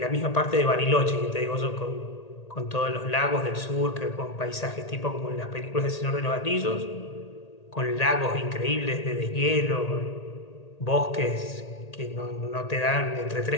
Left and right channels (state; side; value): late; right; 1.8 ms